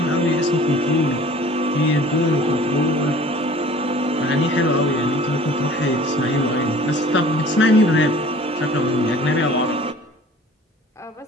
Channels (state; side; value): normal; both; correlation 0.48